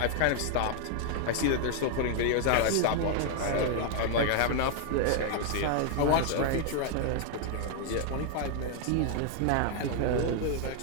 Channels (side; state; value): both; different; correlation 0.00